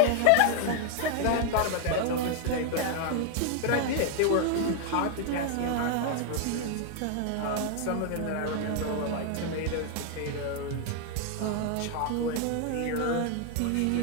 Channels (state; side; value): different; both; correlation 0.00